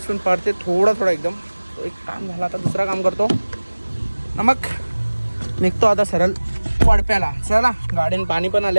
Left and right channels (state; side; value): inverted; both; correlation -1.00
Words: पण पडते थोडा एकदम. तो एक काम झाला. आता दुसरा काम करतो. मग निघतो आता सरळ वडप्याला. चला गाडीनं पाणी पण